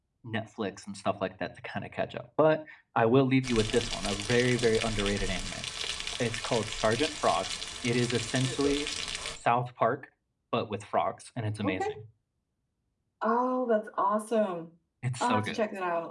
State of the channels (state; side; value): identical; both; correlation 1.00